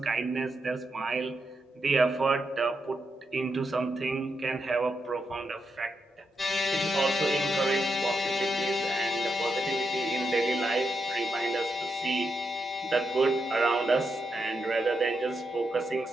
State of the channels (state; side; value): normal; both; correlation 0.84